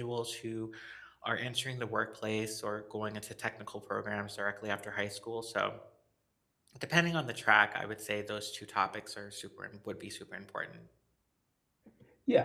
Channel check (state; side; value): identical; both; correlation 1.00